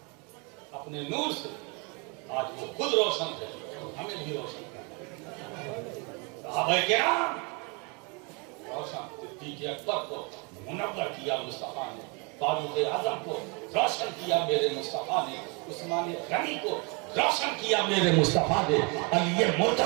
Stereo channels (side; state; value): left; quieter; 31.6 dB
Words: اپنے نور سے، آج وہ خود روشن ہے، ہمیں بھی روشن کرنا. صحابہ کرام روشن، صدیق اکبر کو منور کیا مصطفیٰ نے، فاروق اعظم کو روشن کیا میرے مصطفیٰ نے، عثمان غنی کو روشن کیا میرے مصطفیٰ نے، علی